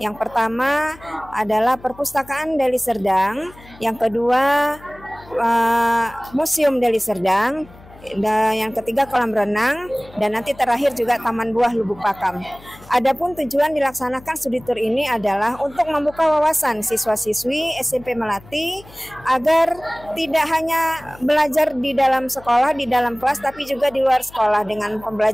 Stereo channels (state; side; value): noise; left; hum, 22 dB below the sound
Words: Yang pertama adalah Perpustakaan Deli Serdang, yang kedua Museum Deli Serdang, dan yang ketiga kolam renang, dan nanti terakhir juga Taman Buah Lubuk Pakam. Adapun tujuan dilaksanakan studi tour ini adalah untuk membuka wawasan siswa-siswi SMP Melati agar tidak hanya belajar di dalam sekolah, di dalam kelas, tapi juga di luar sekolah dengan